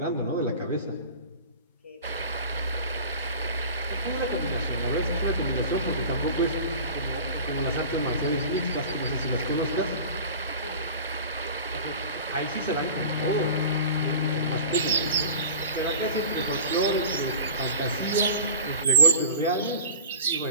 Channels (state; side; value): inverted; both; correlation -0.39